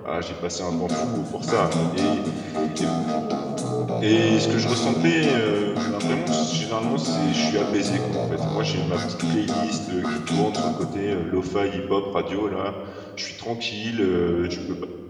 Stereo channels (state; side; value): identical; both; correlation 1.00